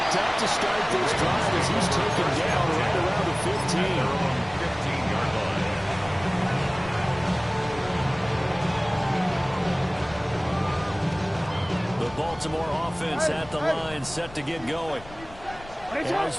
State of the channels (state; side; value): noise; left; rumble, 18 dB below the sound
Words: up to start this drive as he's taken down right around the 15. 15-yard line. The Baltimore offense at the line, set to get going. As